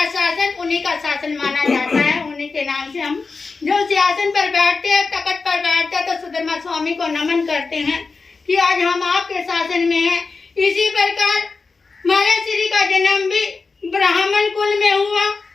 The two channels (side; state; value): right; quieter; 4.3 dB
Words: शासन, उन्हीं का शासन माना जाता है। उन्हीं के नाम से हम जो सिंहासन पर बैठते हैं, तखत पर बैठते हैं, तो सुधर्मा स्वामी को नमन करते हैं कि आज हम आपके शासन में हैं। इसी प्रकार महाराज श्री का जन्म भी ब्राह्मण कुल में हुआ